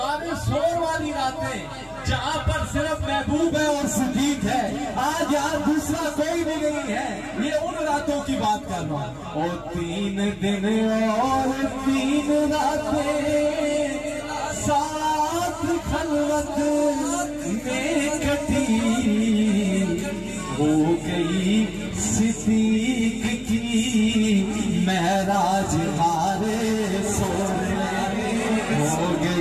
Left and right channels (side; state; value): both; identical; correlation 1.00